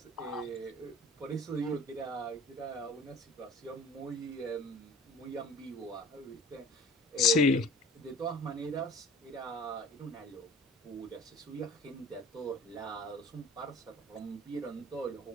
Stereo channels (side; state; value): both; normal; correlation 0.44